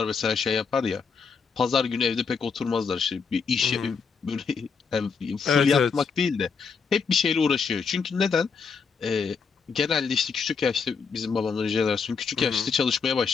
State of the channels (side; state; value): right; quieter; 5.5 dB